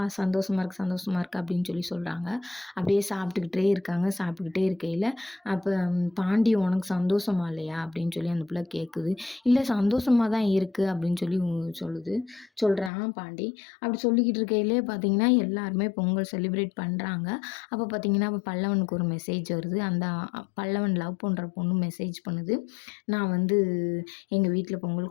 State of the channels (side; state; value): right; drops out; at 12.9 s